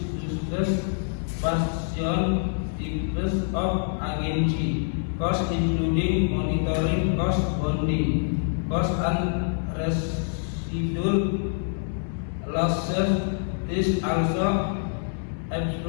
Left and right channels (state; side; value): silent; right; digital silence